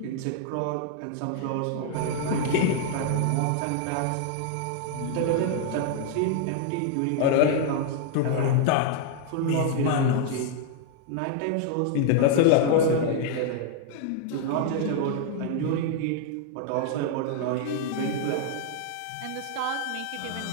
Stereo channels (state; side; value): different; both; correlation 0.00